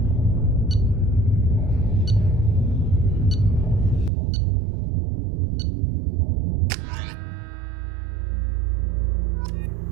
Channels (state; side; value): drops out; left; at 4.1 s